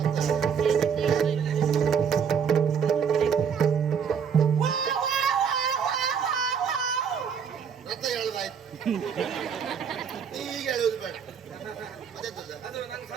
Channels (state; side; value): quieter; left; 7.0 dB